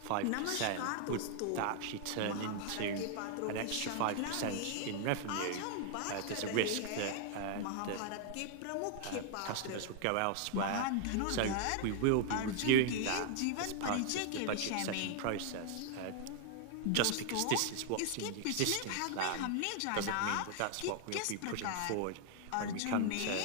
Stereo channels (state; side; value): different; both; correlation 0.00